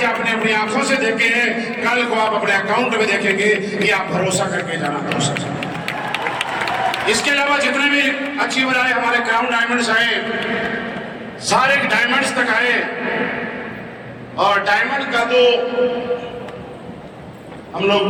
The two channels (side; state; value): both; identical; correlation 1.00